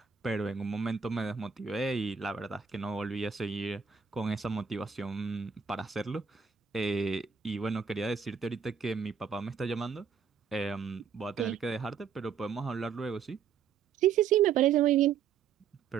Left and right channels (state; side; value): quieter; left; 6.8 dB